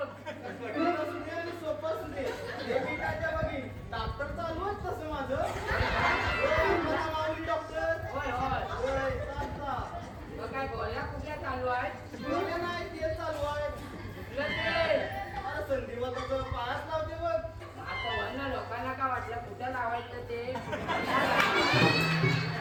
कठीण असू दे आणि सोपं असू दे हे मी काय त्या बघी डॉक्टर चालू आहे तसं माझं होय, मला माऊली डॉक्टर होय होय होय, चालता. मग काय गोळ्या कुठल्या चालू आहेत गोळ्या नाही ते चालू आहे कुठलं ते अरे संधिवाताचं पायाच लावते बघ आता वरनं लोकांना काय वाटलं कुठं लावायचं ते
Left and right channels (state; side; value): identical; both; correlation 1.00